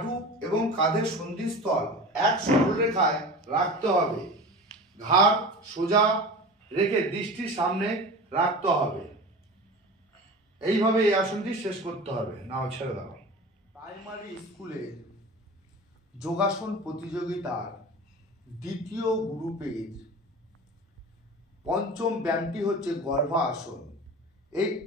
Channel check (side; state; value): both; normal; correlation 0.34